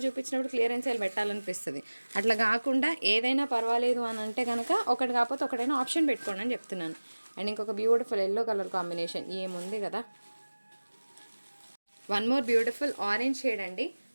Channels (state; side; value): inverted; both; correlation -1.00